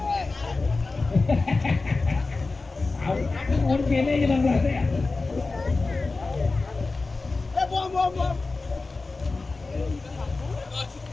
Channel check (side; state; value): right; quieter; 3.7 dB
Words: Mungkin ini yang plastik ya.